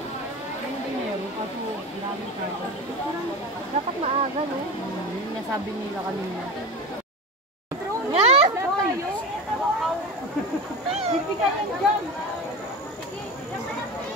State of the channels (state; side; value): normal; both; correlation 0.28